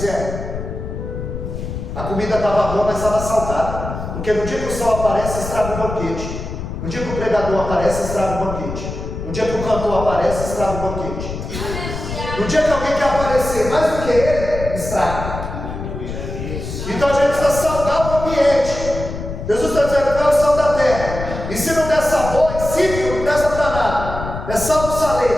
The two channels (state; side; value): noise; left; rumble, 7 dB below the sound